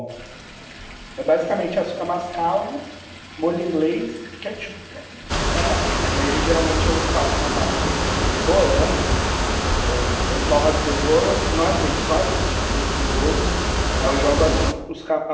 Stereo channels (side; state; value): both; identical; correlation 1.00